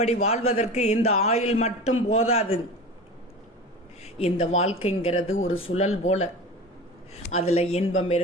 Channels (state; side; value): normal; both; correlation 0.33